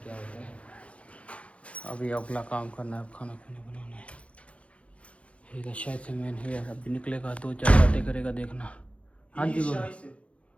क्या होता है। अभी अगला काम करना है, खाना खुना बनाना है। ठीक है, शायद से मैन है, अभी निकलेगा, 2-4 बातें करेगा, देखना। हाँ जी बोलो।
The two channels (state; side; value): late; right; 0.062 ms